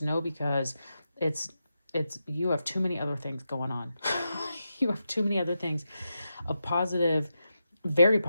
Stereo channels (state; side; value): inverted; both; correlation -0.87